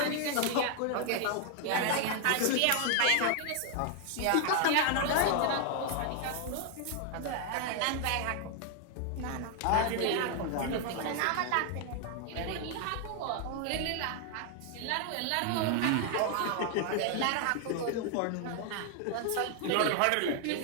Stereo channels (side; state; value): both; different; correlation 0.00